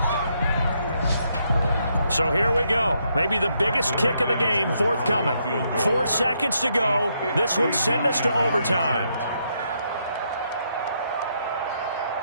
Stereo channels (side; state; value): both; inverted; correlation -0.76